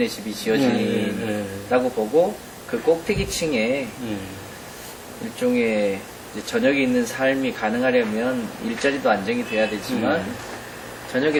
집이 지어진다고 보고, 그 꼭대기층에 일종의 이제 저녁에 있는 삶이 가능하려면 일자리도 안정이 돼야 되지만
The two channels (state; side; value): identical; both; correlation 1.00